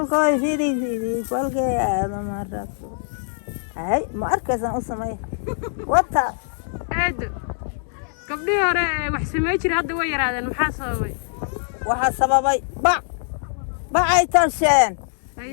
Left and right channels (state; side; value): silent; right; 64 dB below the other